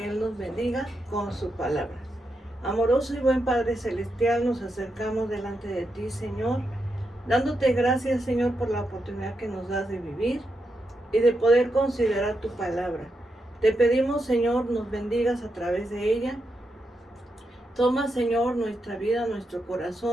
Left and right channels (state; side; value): normal; both; correlation 0.84